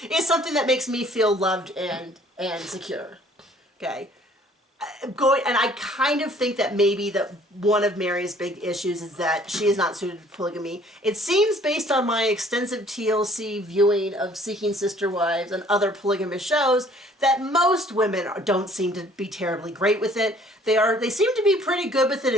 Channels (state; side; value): normal; both; correlation 0.57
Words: It's something that makes me feel loved and secure. Okay. And I kind of think that maybe that one of Mary's big issues is that she is not suited for polygamy. It seems, based on my extensive TLC viewing of Seeking Sister Wives and other polygamous shows, that most women don't seem to be terribly great with it. They seem to be pretty good with it